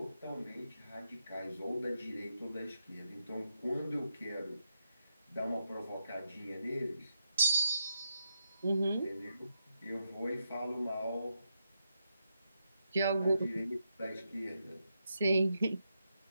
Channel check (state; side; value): inverted; both; correlation -0.84